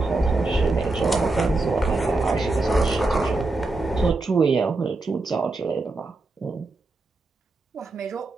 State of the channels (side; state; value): left; quieter; 3.2 dB